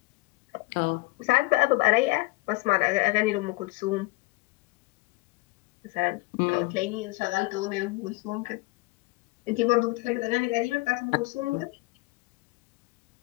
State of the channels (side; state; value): right; quieter; 23.0 dB